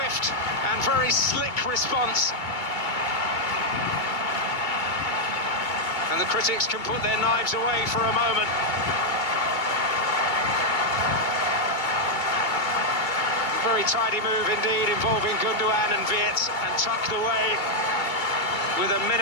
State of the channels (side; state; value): right; late; 2.2 ms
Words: and very slick response. And the critics can put their knives away for a moment. Very tidy move indeed, involving Gundogan and Wirtz, and tucked away with a